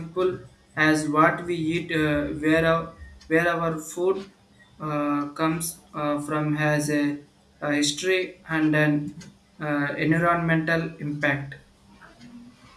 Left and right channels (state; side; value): identical; both; correlation 1.00